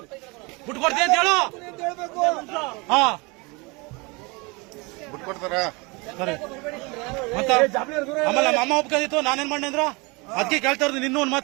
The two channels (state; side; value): quieter; left; 27.5 dB